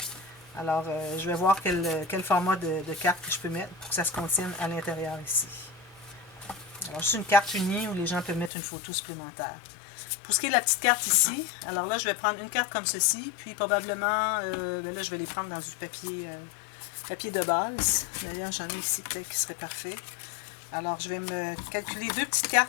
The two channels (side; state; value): right; drops out; at 8.5 s